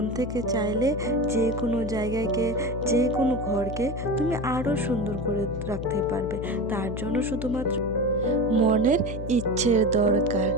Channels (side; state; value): left; noise; hum, 7 dB below the sound